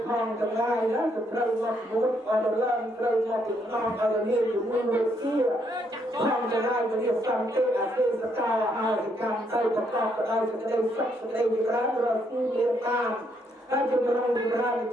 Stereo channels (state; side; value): normal; both; correlation 0.73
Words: ផងទាំងឡាយណាទៅត្រូវមកមួយអរឡើងត្រូវមកចំណងអរនេះជំនួយវិទ្យាផងទាំងឡាយវិទ្យាសន្តិអទេសកលអាយកម្មទៅប្រកបដោយសេចក្តីសុខសេចក្តីវិរៈរស់ទីមានតាមហើយជំរុញវិរៈ